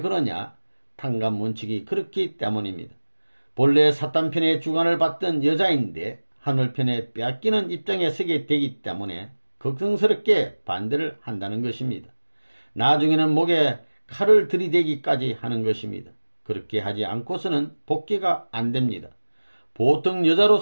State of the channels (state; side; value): inverted; both; correlation -1.00